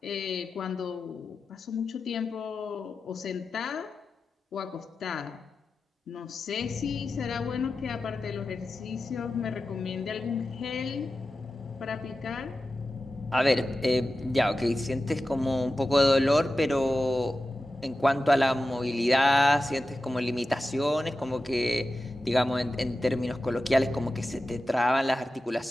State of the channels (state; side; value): normal; both; correlation 0.93